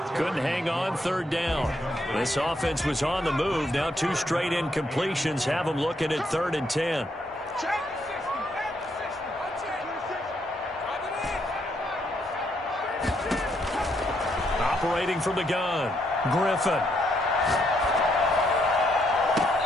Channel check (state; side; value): normal; both; correlation 0.75